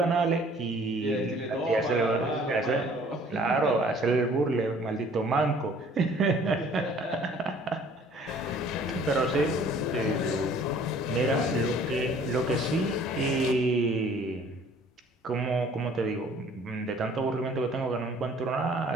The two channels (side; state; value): both; normal; correlation 0.54